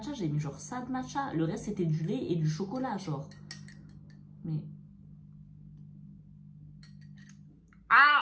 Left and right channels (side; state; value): both; identical; correlation 1.00